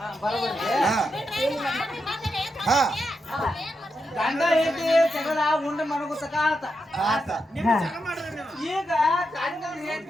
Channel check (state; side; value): normal; both; correlation 0.85